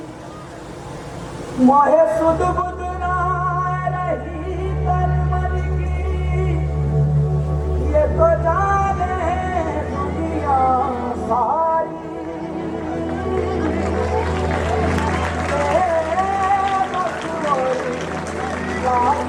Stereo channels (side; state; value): both; identical; correlation 1.00